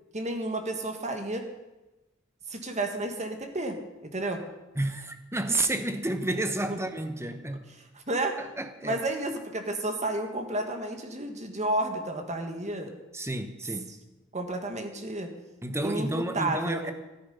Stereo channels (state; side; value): normal; both; correlation 0.32